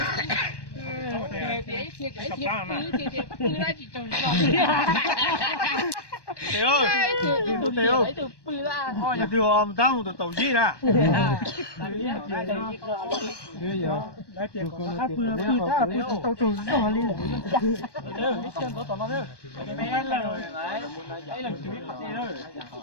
Tiểu ơi, Tiểu thôi nhà Tiểu ông tao một tàu gì nè. Bây giờ đã tiền của nó tàu trù nó đi.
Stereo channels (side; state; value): right; late; 1.2 ms